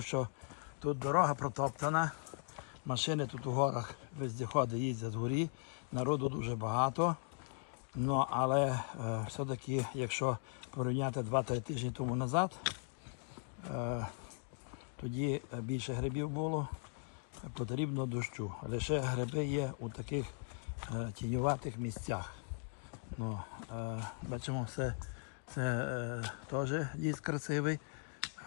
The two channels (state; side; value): silent; right; 52 dB below the other